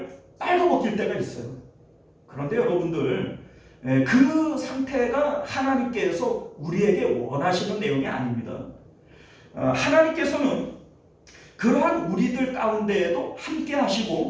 빨아먹힐 때가 있어요. 그런데 여러분들, 그 상태가 하나님께서 우리에게 원하시는 내용이 아닙니다. 하나님께서는 그러한 우리들 가운데에도 함께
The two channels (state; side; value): identical; both; correlation 1.00